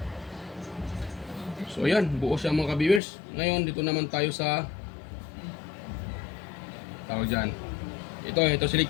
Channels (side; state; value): right; drops out; at 3.0 s